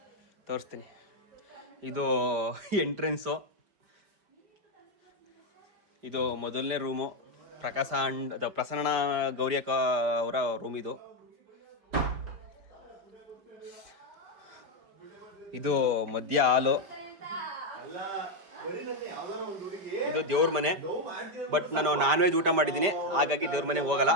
ತೋರಿಸ್ತೀನಿ. ಇದು ಎಂಟ್ರೆನ್ಸು, ಇದು ಮೊದಲನೇ ರೂಮು. ಪ್ರಕಾಶ ಅಂಡ್ ಪ್ರಸನ್ನ ಗೌರಿಯಕ್ಕ ಅವರ ರೂಮ್ ಇದು. ಇದು ಮಧ್ಯ ಹಾಲು. ಇದು ದೇವ್ರ ಮನೆ. ಬಟ್ ನಾನು ನಾನ್ ವೆಜ್ ಊಟ ಮಾಡಿದ್ದೀನಿ, ಹಾಗಾಗಿ ದೇವ್ರ ಮನೆಗೆ ಹೋಗಲ್ಲ,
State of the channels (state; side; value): late; left; 5.1 ms